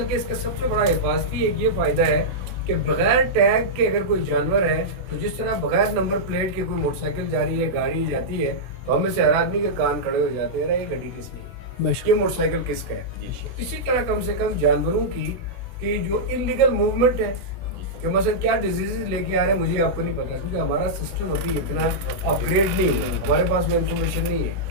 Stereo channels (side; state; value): left; late; 16 ms